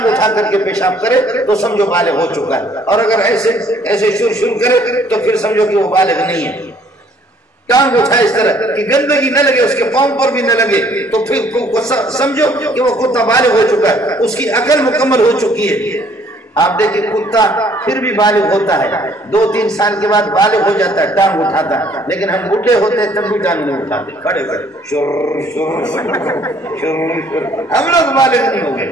اٹھا کر کے پیشاب کرے تو سمجھو بالغ ہو چکا ہے، اور اگر ایسے شر کرے تو پھر سمجھو کہ وہ بالغ نہیں ہے۔ ٹانگ اٹھائے اس طرح کہ گندگی نہ لگے، اس کے پاؤں پر بھی نہ لگے، تو پھر سمجھو کہ وہ کتا بالغ ہو چکا ہے، اس کی عقل مکمل ہو چکی ہے۔ آپ دیکھیں کتا پھر بھی بالغ ہوتا ہے، 2-3 سال کے بعد بالغ ہو جاتا ہے، ٹانگ اٹھاتا ہے، لیکن ہم بوڑھے ہوتے ہیں تب بھی ٹانگ نہیں اٹھاتے، کھڑے کھڑے شر شر شر۔ ہم لوگ بالغ نہیں ہو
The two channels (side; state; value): both; normal; correlation 0.61